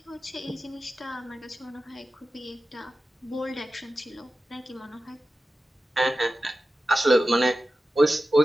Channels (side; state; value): both; normal; correlation 0.93